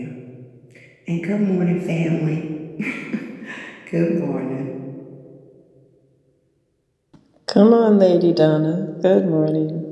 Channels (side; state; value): both; identical; correlation 1.00